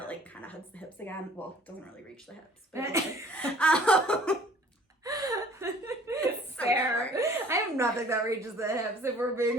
like kind of hugs the hips again. Well, it doesn't really reach the hips, but fair. I have nothing that reaches the hips, if we're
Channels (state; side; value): normal; both; correlation 0.52